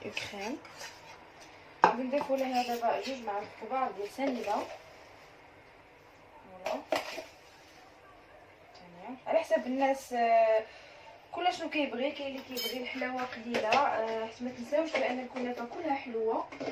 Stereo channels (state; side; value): identical; both; correlation 1.00